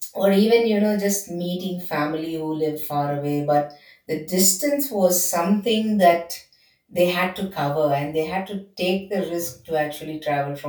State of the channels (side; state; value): both; identical; correlation 1.00